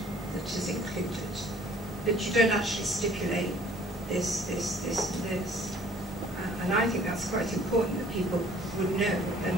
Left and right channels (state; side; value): normal; both; correlation 0.55